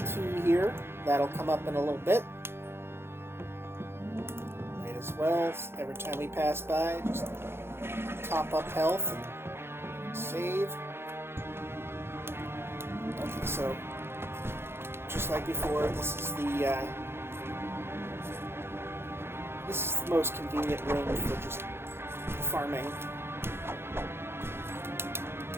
key here. That'll come up in a little bit. Might as well, every time we pass by, just top up health and save. Okay, so just like before, this is the most convenient room for just farming.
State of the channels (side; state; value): left; late; 0.11 ms